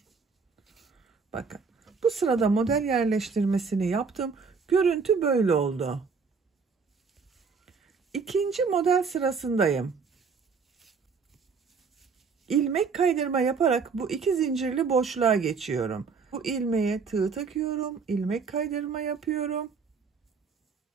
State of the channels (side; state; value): left; quieter; 5.2 dB